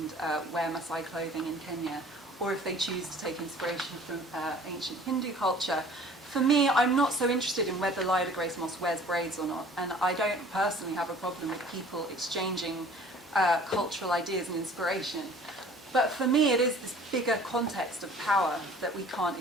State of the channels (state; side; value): normal; both; correlation 0.50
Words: wear Maasai clothing in Kenya, or if they choose to take inspiration from ancient Hindu culture. For me, I'm not so interested in whether Lila Grace Moss wears braids or not, and I don't personally have a problem with people exchanging cultural ideas and inspiration. But for me, it is this bigger context of power that we can't